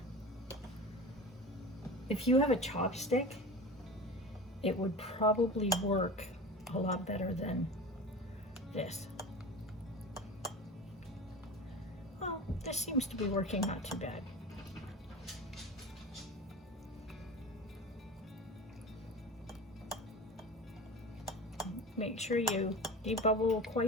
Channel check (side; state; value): both; normal; correlation 0.33